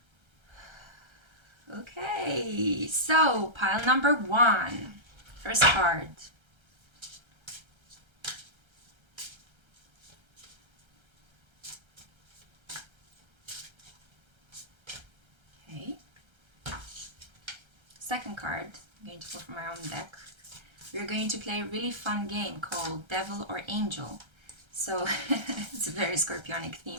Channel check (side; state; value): left; late; 1.3 ms